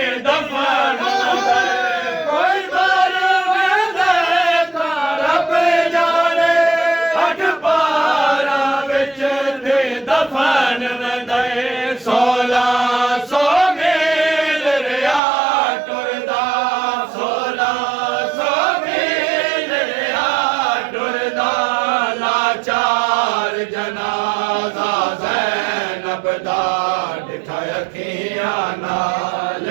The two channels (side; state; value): left; drops out; at 15.2 s